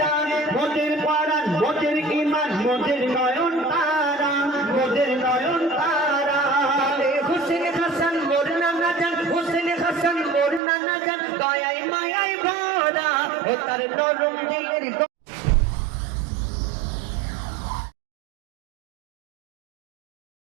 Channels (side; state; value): left; drops out; at 10.6 s